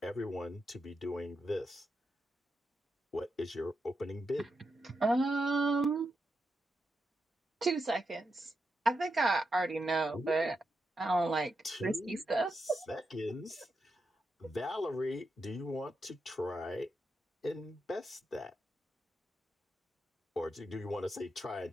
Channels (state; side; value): normal; both; correlation 0.85